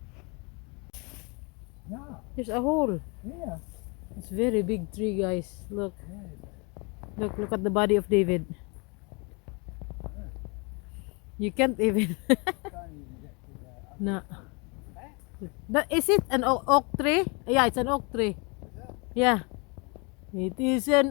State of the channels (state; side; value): quieter; right; 31.3 dB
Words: Yeah, There's a hole. yeah. It's very big tree, guys. Look. Yeah. Look at the body of David. You can't even. Can't even get to the other No. side. Eh? Is it an oak tree? Yeah, it's an oak tree. Is that? Yeah. It is an